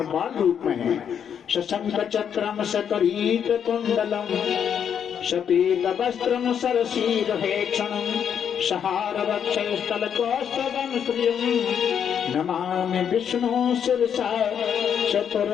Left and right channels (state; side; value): quieter; right; 8.2 dB